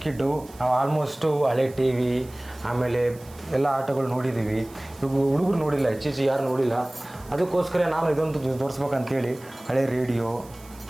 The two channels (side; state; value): right; noise; hiss, 23 dB below the sound